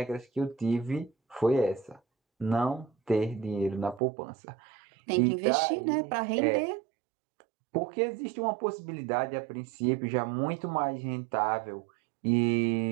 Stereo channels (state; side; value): drops out; left; at 4.0 s